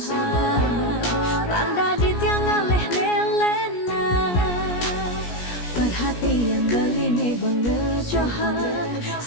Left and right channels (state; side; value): late; right; 17 ms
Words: randa di tiang ngaleh nelena, perhatian beli nih bengejohan,